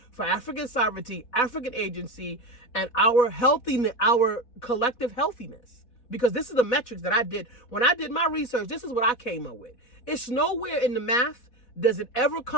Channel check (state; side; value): late; right; 4.1 ms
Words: for African sovereignty, African agency, and our healthiness, our collective healthiness. Because this is the metrics that I did. When I did my research, this is what I came up with. It's nowhere in the math does it ever